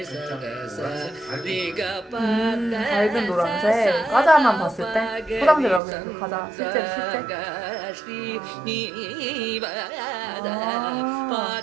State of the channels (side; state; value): left; drops out; at 5.8 s